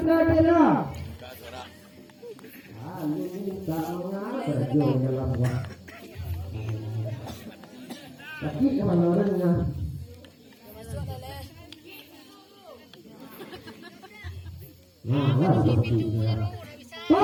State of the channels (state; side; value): identical; both; correlation 1.00